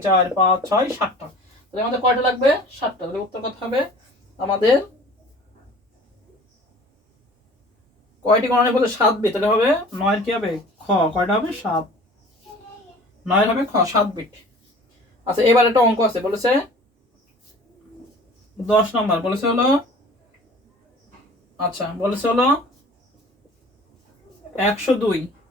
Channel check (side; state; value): both; normal; correlation 0.46